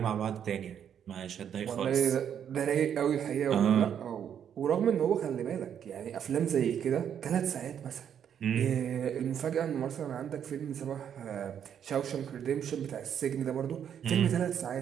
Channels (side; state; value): left; quieter; 8.8 dB